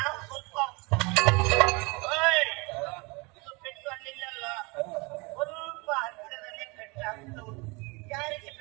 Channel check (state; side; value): quieter; left; 27.3 dB